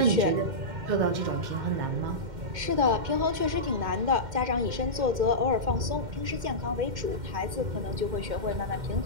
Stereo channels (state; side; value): late; left; 2.1 ms